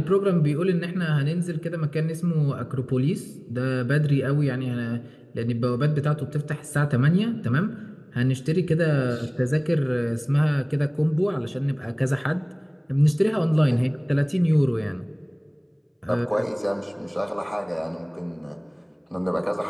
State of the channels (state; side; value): identical; both; correlation 1.00